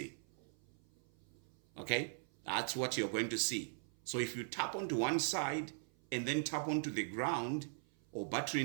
Okay? That's what you're going to see. So if you tap onto one side and then tap onto the ground, or battery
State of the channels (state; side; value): silent; left; 51 dB below the other